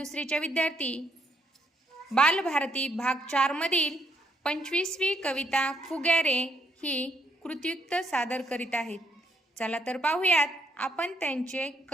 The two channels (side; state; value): both; normal; correlation 0.72